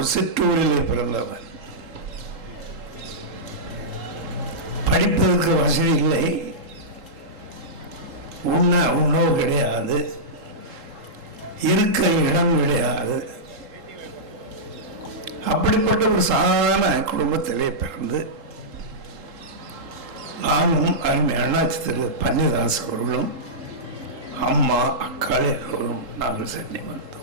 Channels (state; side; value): late; left; 3.8 ms